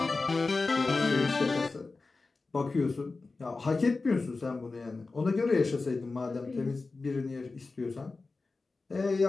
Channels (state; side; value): quieter; right; 3.8 dB